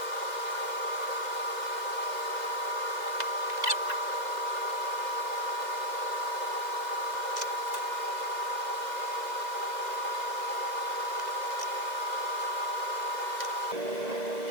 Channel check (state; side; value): late; left; 2.0 ms